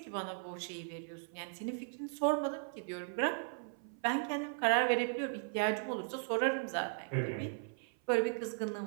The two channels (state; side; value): silent; left; 53 dB below the other